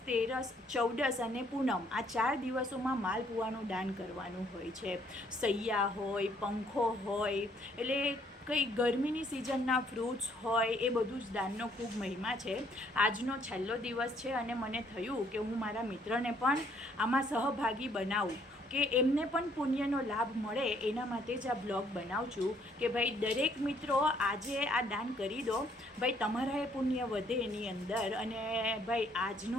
13, 14 અને પૂનમ આ 4 દિવસોમાં માલપુઆનું દાન કરવાનું હોય છે. સૈયા હોય, પંખો હોય, એટલે કંઈ ગરમીની સિઝનના ફ્રૂટ્સ હોય, એ બધું જ દાનનો ખૂબ મહિમા છે. આજનો છેલ્લો દિવસ છે અને મને થયું કે હું મારા મિત્રને પણ આમાં સહભાગી બનાવું, કે એમને પણ પુણ્યનો લાભ મળે, એના માટે જ આ બ્લોગ બનાવું છું કે ભાઈ દરેક મિત્રો આજે આ દાન કરી દો. ભાઈ તમારા એ પુણ્ય વધે એની અંદર. અને ભાઈ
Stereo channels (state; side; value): normal; both; correlation 0.66